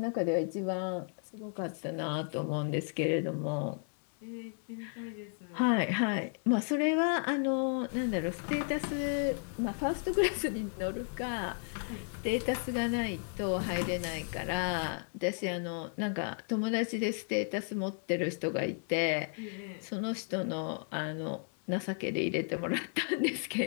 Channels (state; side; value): silent; right; 55 dB below the other